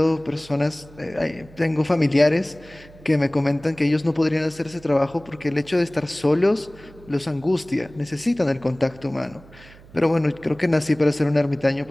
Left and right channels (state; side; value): noise; right; hum, 22 dB below the sound